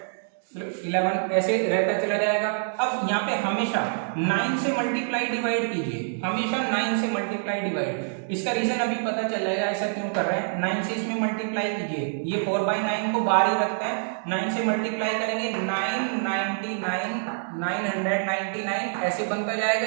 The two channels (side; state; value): left; silent; digital silence